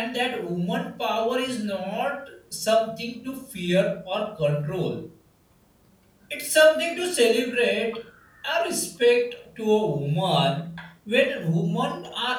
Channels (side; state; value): both; identical; correlation 1.00